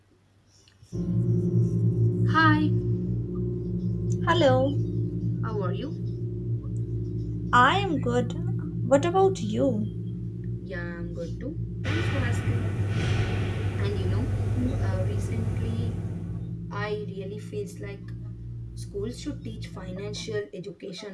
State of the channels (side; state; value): both; identical; correlation 1.00